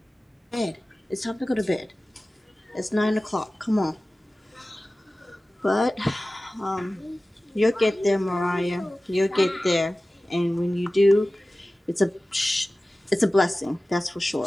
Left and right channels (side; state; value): both; normal; correlation 0.96